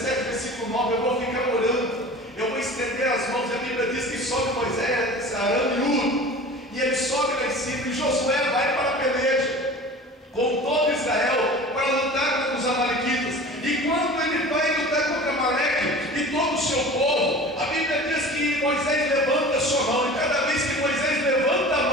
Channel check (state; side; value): normal; both; correlation 0.39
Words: versículo 9: eu vou ficar orando, eu vou estender as mãos. A Bíblia diz que sobe Moisés, Arão e Hur, e ele sobe lá em cima, e Josué vai para a peleja com todo Israel para lutar contra os amalequitas. E quando ele vai lutar contra Amaleque e todo o seu povo, a Bíblia diz que Moisés levanta a sua mão, e cada vez que Moisés levanta a